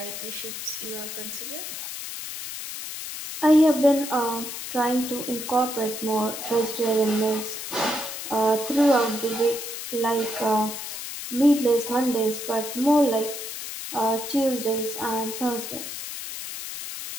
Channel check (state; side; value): noise; left; hiss, 8 dB below the sound